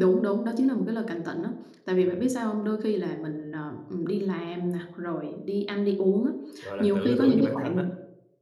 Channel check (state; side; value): identical; both; correlation 1.00